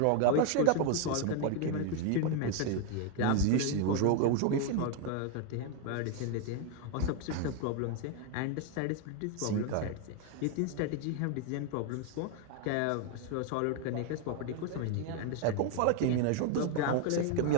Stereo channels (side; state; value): both; different; correlation 0.01